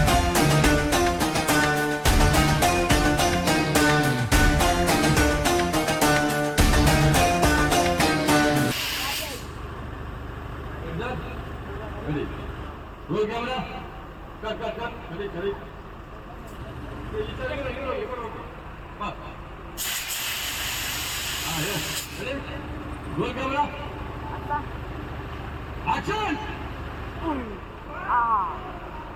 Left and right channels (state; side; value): identical; both; correlation 1.00